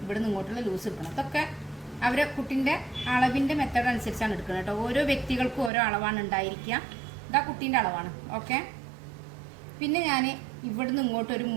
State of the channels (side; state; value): left; drops out; at 5.7 s